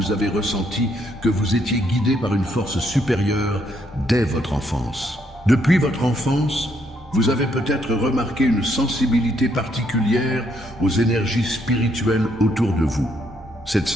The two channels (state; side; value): normal; both; correlation 0.73